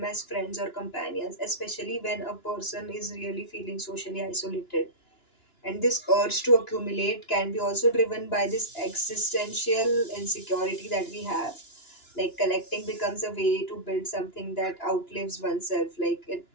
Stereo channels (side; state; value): right; late; 2.9 ms